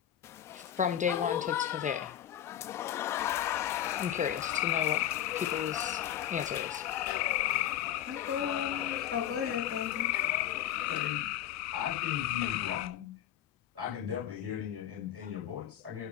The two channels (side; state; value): right; quieter; 11.0 dB